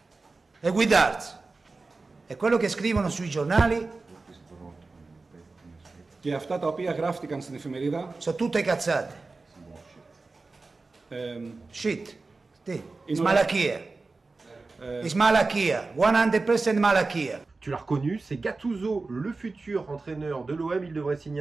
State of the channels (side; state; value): left; quieter; 3.7 dB